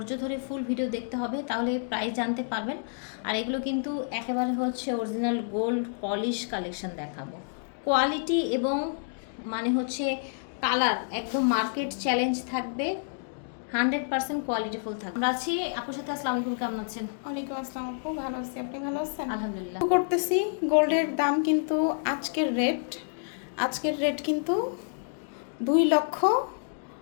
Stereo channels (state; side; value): silent; right; digital silence